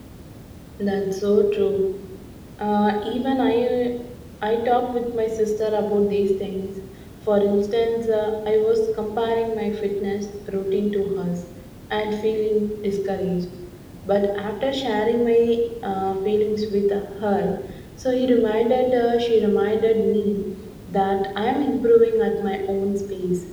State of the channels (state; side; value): identical; both; correlation 1.00